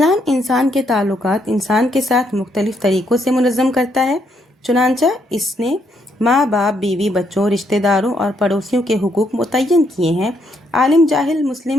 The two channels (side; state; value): both; normal; correlation 0.74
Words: انسان کے تعلقات انسان کے ساتھ مختلف طریقوں سے منظم کرتا ہے، چنانچہ اس نے ماں باپ، بیوی، بچوں، رشتہ داروں اور پڑوسیوں کے حقوق متعین کیے ہیں، عالم، جاہل،